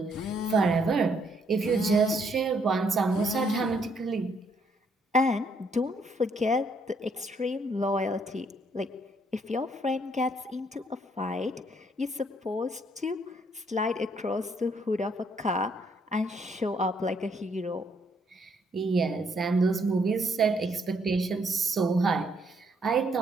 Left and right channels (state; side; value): normal; both; correlation 0.70